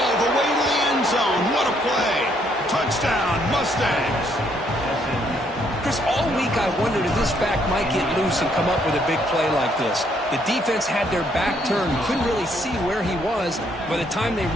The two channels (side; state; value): both; normal; correlation 0.70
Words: the way to the end zone. What a play. Touchdown, Mustangs. Chris, all week I wondered if this back might get loose and come up with a big play like this. The defense had their back turned, couldn't really see where he was. By the time they